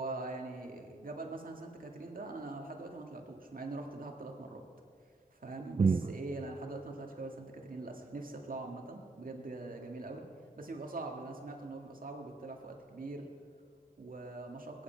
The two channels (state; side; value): quieter; left; 3.5 dB